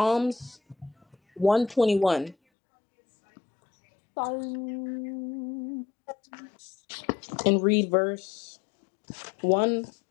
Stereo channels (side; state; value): right; drops out; at 2.4 s